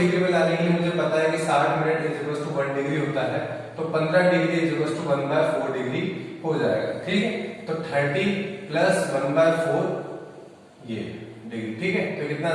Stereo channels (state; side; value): identical; both; correlation 1.00